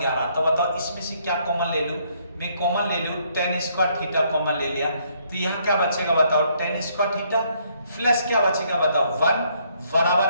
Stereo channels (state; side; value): inverted; both; correlation -0.69